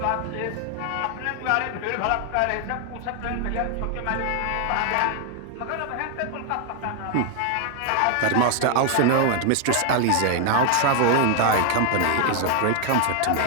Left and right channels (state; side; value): different; both; correlation 0.00